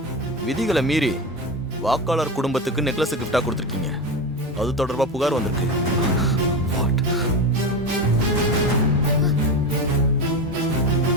விதிகளை மீறி வாக்காளர் குடும்பத்துக்கு நெக்லஸ் கிஃப்டா கொடுத்துருக்கீங்க. அது தொடர்பா புகார் வந்திருக்கு.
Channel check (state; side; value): normal; both; correlation 0.20